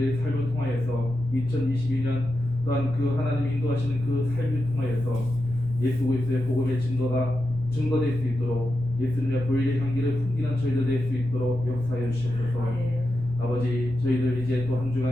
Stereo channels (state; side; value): noise; right; rumble, 15 dB below the sound